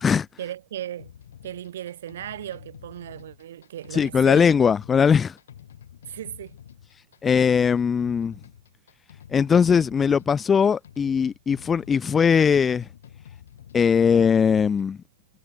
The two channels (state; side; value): quieter; right; 6.1 dB